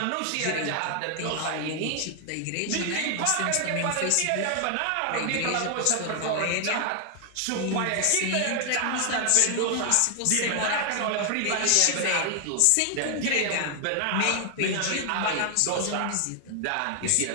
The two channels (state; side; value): different; both; correlation 0.00